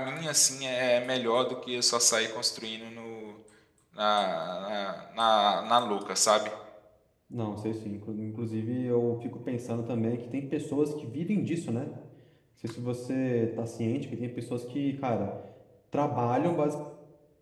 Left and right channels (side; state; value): both; identical; correlation 1.00